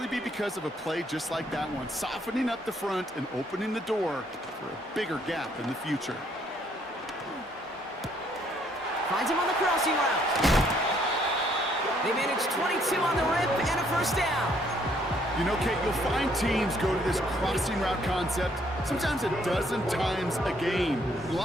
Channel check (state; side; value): normal; both; correlation 0.67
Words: be because of a play just like that one, softening up the front and opening the door for a bigger gap in the future. Finds him on the crossing route. They managed 22 on the rip and a first down. You know, Kate, you'll find teams go to this crossing route concept sometimes a dozen times a game. A